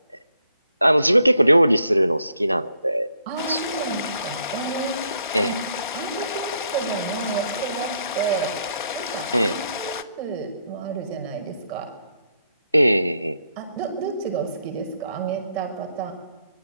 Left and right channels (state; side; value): inverted; both; correlation -0.74